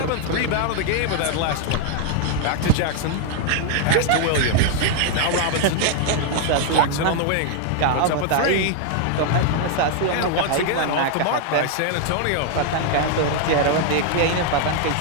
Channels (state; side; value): different; both; correlation 0.00